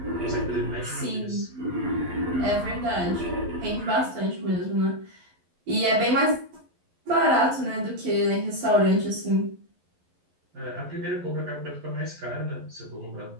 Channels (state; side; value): late; left; 11 ms